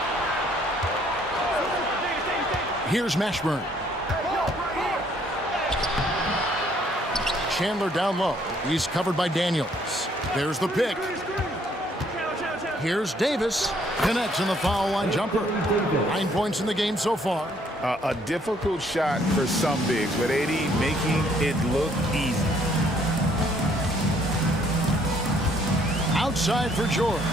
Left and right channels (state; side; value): normal; both; correlation 0.65